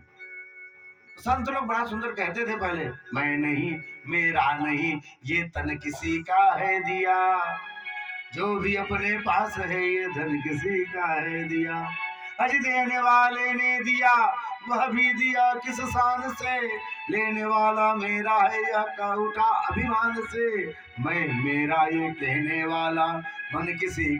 संत लोग बड़ा सुंदर कहते थे पहले, मैं नहीं, मेरा नहीं, ये तन किसी का है दिया, जो भी अपने पास है ये धन किसी का है दिया। अज देने वाले ने दिया, वह भी दिया किस शान से, लेने वाला मेरा है यह का उठा अभिमान से। मैं मेरा ये कहने वाला, मन किसी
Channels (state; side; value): identical; both; correlation 1.00